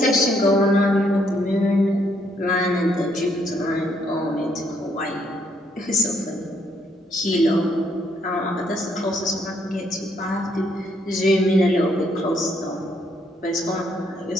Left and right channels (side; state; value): both; normal; correlation 0.71